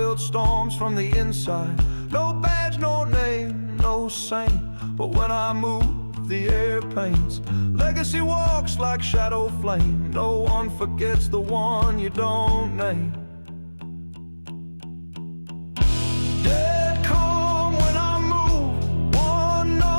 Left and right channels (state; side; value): inverted; both; correlation -1.00